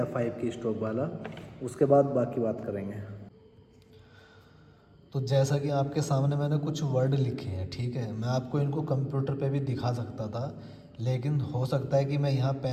5 की स्ट्रोक वाला, उसके बाद बाकी बात करेंगे। तो जैसा कि आपके सामने मैंने कुछ वर्ड लिखे हैं, ठीक है। मैं आपको इनको कंप्यूटर पे भी दिखा सकता था, लेकिन हो सकता है कि मैं यहाँ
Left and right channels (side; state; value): both; identical; correlation 1.00